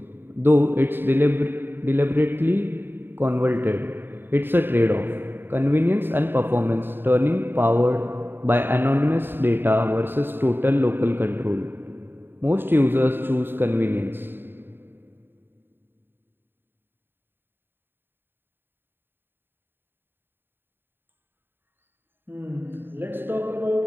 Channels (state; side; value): late; left; 0.099 ms